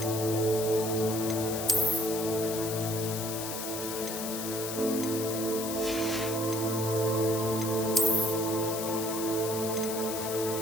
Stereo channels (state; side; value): noise; left; hiss, 6 dB below the sound